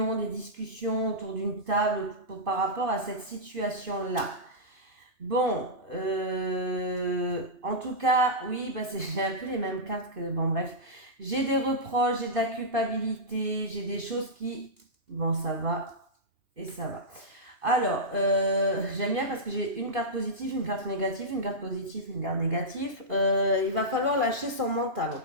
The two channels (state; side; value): late; left; 2.9 ms